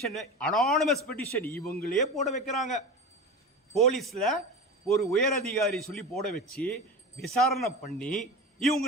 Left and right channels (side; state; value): both; normal; correlation 0.28